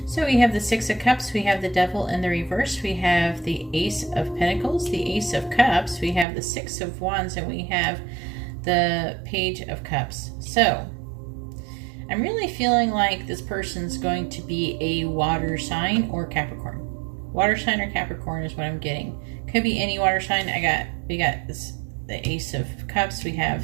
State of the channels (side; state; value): left; drops out; at 6.2 s